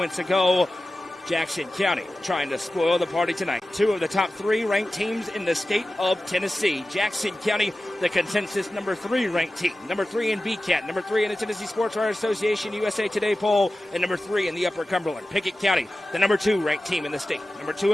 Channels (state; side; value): normal; both; correlation 0.95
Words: ago. Jackson County trying to spoil the party tonight. Two of the top three ranked teams in the state of Tennessee. Jackson County, the consensus number 3 ranked team. Number 3 in BCAT, number 3 in the Tennessee Sports Writers Association USA Today poll, and number 3 in the Upper Cumberland. Pickett County, the number 2 ranked team in the state. Number 2